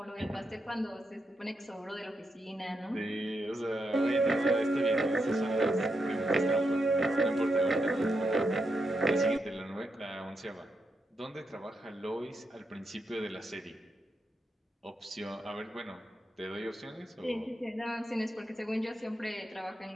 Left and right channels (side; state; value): both; normal; correlation 0.83